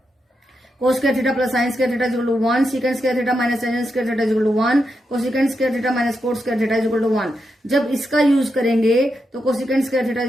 cos square theta plus sine square theta is equal to 1, secant square theta minus tangent square theta is equal to 1, cosecant square theta minus cot square theta is equal to 1। जब इसका use करेंगे तो cosecant square theta is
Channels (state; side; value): normal; both; correlation 0.85